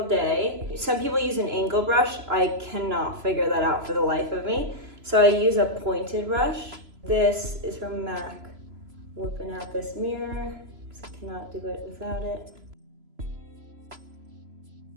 day. Some people use an angle brush. I cannot figure that out for the life of me. So I use a pointed brush. This is from MAC. Whipping out this mirror, because I cannot do it without it.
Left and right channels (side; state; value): left; late; 3.0 ms